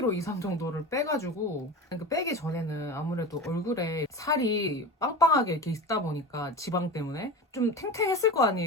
이상 정도를 빼가지고 그 빼기 전에는 아무래도 얼굴에 살이 빵빵하게 이렇게 있다 보니까 지방 때문에 좀 탱탱했을 거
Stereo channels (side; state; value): both; normal; correlation 0.29